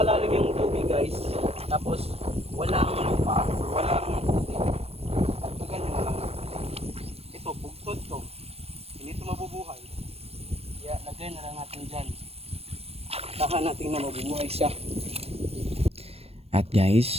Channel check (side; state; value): left; late; 0.29 ms